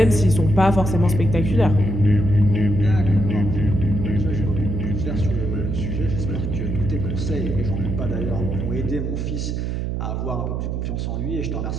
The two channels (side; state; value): right; noise; hum, 2 dB below the sound